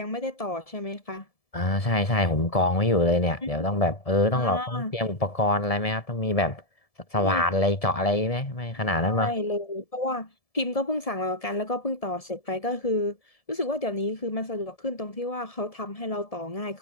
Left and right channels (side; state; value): right; late; 1.7 ms